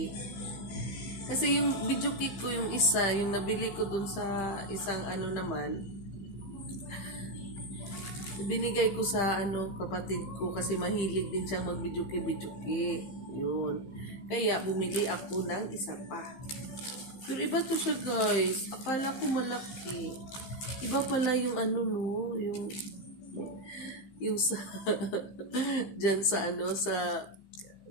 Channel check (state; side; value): late; right; 15 ms